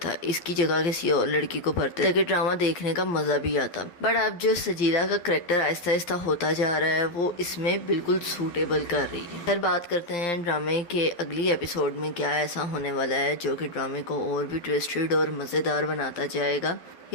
इसकी जगह किसी और लड़की को भरते ताकि ड्रामा देखने का मजा भी आता। बट अब जो सजीला का करैक्टर आहिस्ता आहिस्ता होता जा रहा है वो इसमें बिल्कुल सूटेबल कर रही है। फिर बात करते हैं ड्रामे के अगली एपिसोड में क्या ऐसा होने वाला है जो कि ड्रामे को और भी ट्विस्टेड और मज़ेदार बनाता जाएगा।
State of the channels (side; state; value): right; late; 12 ms